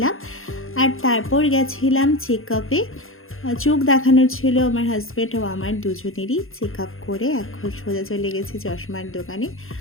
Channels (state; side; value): late; right; 0.60 ms